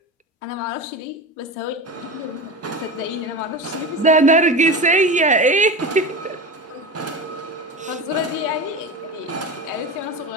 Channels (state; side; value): normal; both; correlation 0.27